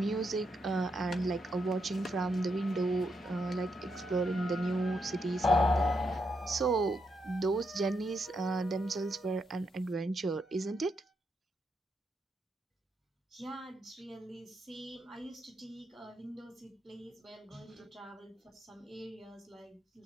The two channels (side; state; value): both; normal; correlation 0.80